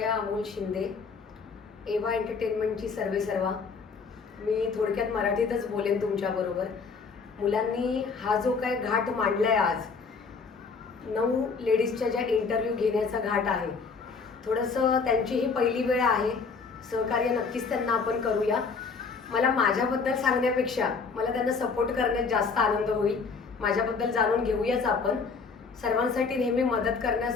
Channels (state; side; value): quieter; right; 4.9 dB